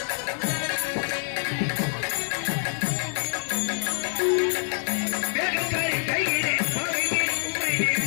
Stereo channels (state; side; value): silent; right; digital silence